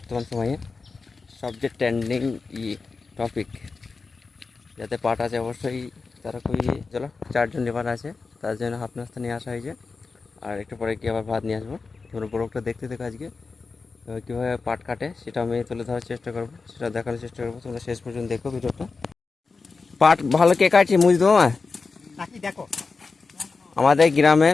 সময়ে সবচেয়ে ট্রেন্ডিং টপিক যাতে পাট আছে অবশ্যই তারা খুবই চলো 4 জন লেবার আছে, তার জন্য হাফ নাস্তা নিয়ে আসা হয়েছে। আর একটু পরে কি আবার ভাত নিয়ে আসবো। তোমরা ব্লগটা দেখতে দেখো আজকে কীভাবে পাট কাটে সেটা আমি তুলে ধরার চেষ্টা করবো, সেটা দেখানোর চেষ্টা করবো। তোমরা শেষ পর্যন্ত দেখো ভিডিওটা। পাট ভালো কে কাটছে মুজ দেবো নাকি দেখো আমাদের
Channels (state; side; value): quieter; right; 4.4 dB